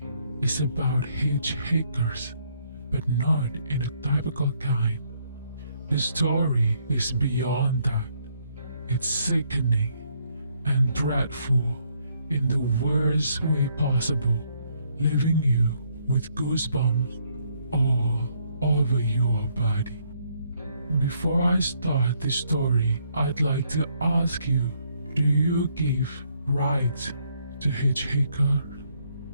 is about hitchhikers, but not in a typical kind. The story is beyond that. It's sickening and dreadful in the worst way possible, leaving you with goosebumps all over your body. Before I start the story, I'd like to ask you, do you give rights to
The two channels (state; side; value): inverted; both; correlation -0.71